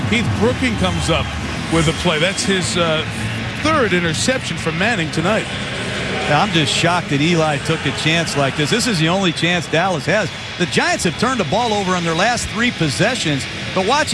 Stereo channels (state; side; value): identical; both; correlation 1.00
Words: Keith Brooking comes up with a play. That's his 3rd interception from Manning tonight. I'm just shocked that Eli took a chance like this. This is the only chance Dallas has. The Giants have turned the ball over on their last 3 possessions. But watch